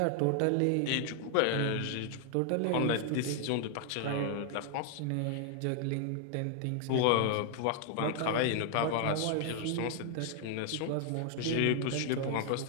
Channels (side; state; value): both; different; correlation 0.00